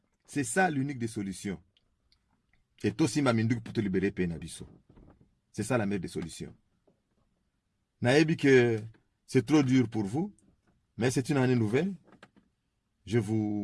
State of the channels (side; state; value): both; identical; correlation 1.00